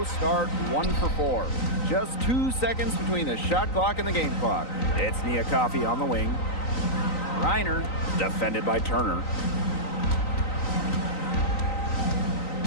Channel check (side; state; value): right; late; 3.9 ms